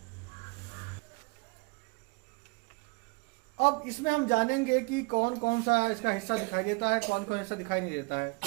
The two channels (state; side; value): quieter; left; 29.0 dB